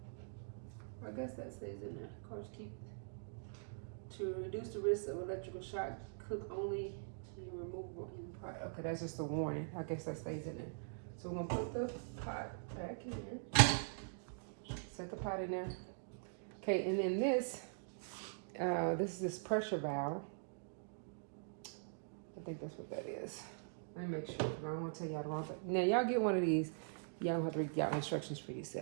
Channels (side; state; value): left; silent; digital silence